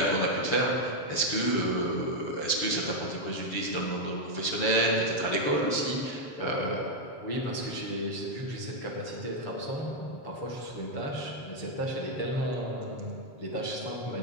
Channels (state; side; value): late; right; 7.0 ms